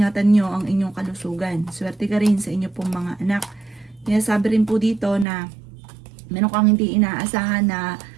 nyo ang inyong kalusugan. Swerte ka rin sa inyo pong mga anak. Kaya sabi rin po dito na meron kang hindi inaasahan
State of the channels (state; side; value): drops out; left; at 5.2 s